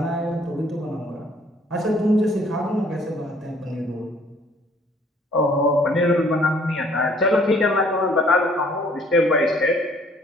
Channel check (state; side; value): normal; both; correlation 0.59